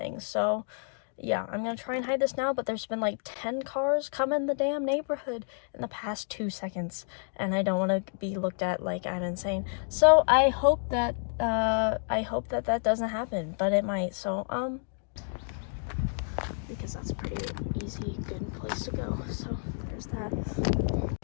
So yeah, I'm gonna try and hide this now, but there's been like 10 cars come in the damn neighborhood in the past 2 seconds, and I don't want to be looked at like I'm insane. So I hope that that doesn't happen, but it might. So because that's a pretty easy, good place to go. So there's that.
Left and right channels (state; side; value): silent; right; digital silence